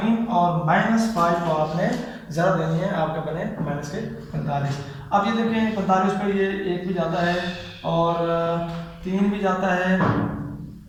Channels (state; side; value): identical; both; correlation 1.00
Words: और -5 को आपने ज़रब देनी है, आपका बने -45। अब ये देखें 45 पर ये 1 भी जाता है और 3 भी जाता है,